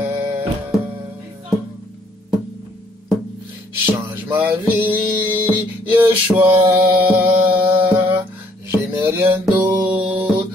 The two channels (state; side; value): normal; both; correlation 0.65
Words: Change ma vie, Yeshua. Je n'ai rien d'autre